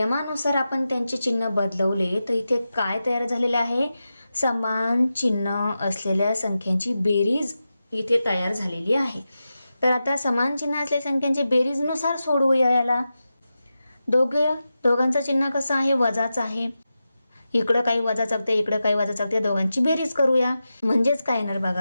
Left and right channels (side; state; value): both; inverted; correlation -0.91